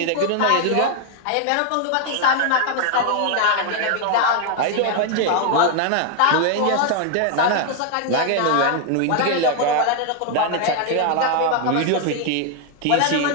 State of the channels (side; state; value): both; different; correlation 0.00